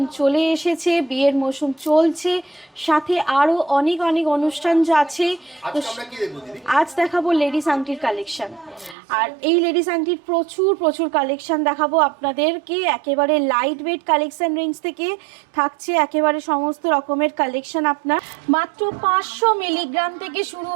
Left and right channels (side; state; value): left; drops out; at 9.0 s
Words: চলে এসেছে, বিয়ের মরশুম চলছে, সাথে আরও অনেক অনেক অনুষ্ঠান যা আছে। তো আজ দেখাবো লেডিস আংটির কালেকশান। আর এই লেডিস আংটির প্রচুর প্রচুর কালেকশান দেখাবো আপনাদেরকে। একেবারে লাইট ওয়েট কালেকশান রেঞ্জ থেকে থাকছে একেবারে সমস্ত রকমের কালেকশান। আপনার মাত্র 500 মিলিগ্রাম থেকে শুরু